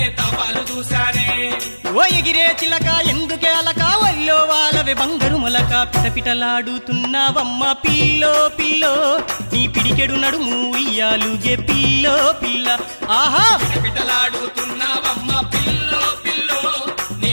తపాలు చూశానే ఓ ఎగిరే చిలక ఎందుకే అలక వల్లో వాళ్ళవే బంగారు మొలక పిటపిటలాడుతున్నావమ్మ పిల్లో పిల్లో నీ పిడికెడు నడుము ఉయ్యాలుగే పిల్లో పిల్ల ఆహా పిటపిటలాడుతున్నావమ్మ పిల్లో పిల్లో నీ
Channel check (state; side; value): inverted; both; correlation -1.00